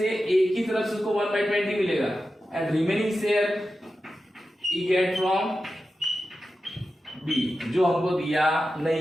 एक ही तरफ से उसको 1/20 मिलेगा एंड रिमेनिंग शेयर ही गेट फ्रॉम बी, जो हमको दिया नहीं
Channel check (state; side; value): normal; both; correlation 0.92